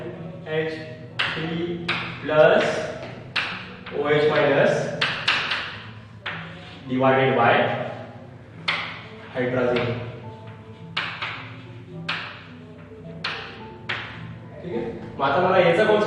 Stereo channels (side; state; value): both; identical; correlation 1.00